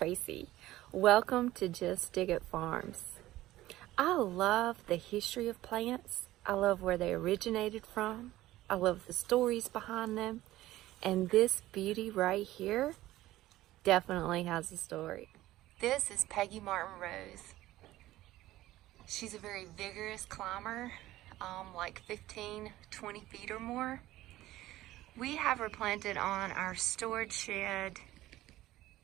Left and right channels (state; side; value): quieter; left; 15.8 dB